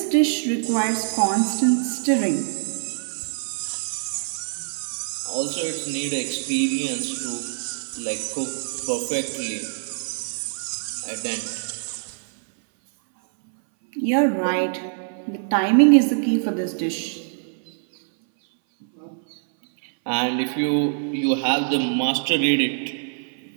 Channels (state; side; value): silent; left; 59 dB below the other